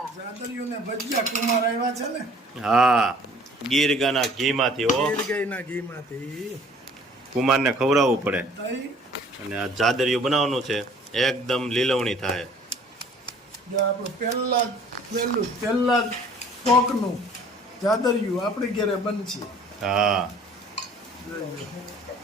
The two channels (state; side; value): normal; both; correlation 0.53